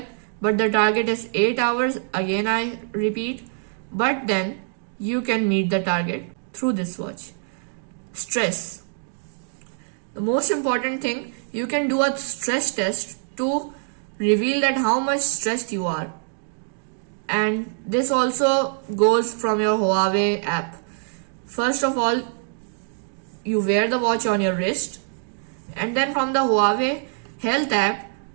But the target is 8 hours. Again I repeat. But then you can meet the target through this watch. Stress. The most important thing, you can do a stress test to reveal that how much stressed you are. And this also goes from your Huawei app. First of all, you wear the watch on your wrist, and then from the Huawei health app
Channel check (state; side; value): silent; left; 56 dB below the other